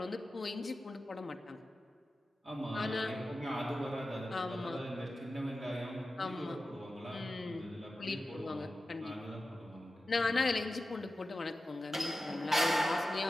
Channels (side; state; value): both; normal; correlation 0.93